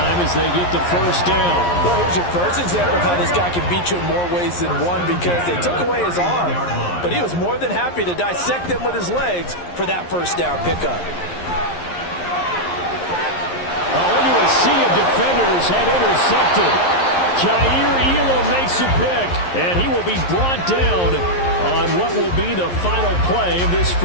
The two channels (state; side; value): late; right; 11 ms